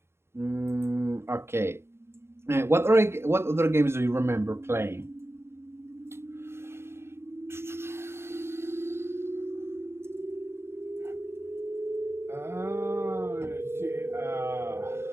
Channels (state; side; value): late; left; 0.12 ms